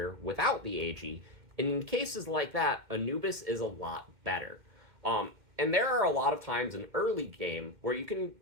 without the AG. And in cases like that, Anubis is a lot better. And there are a lot of times in early game where you can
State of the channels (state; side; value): late; left; 2.1 ms